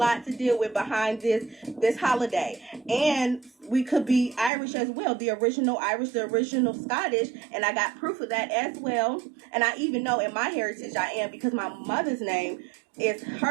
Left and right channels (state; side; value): drops out; left; at 4.5 s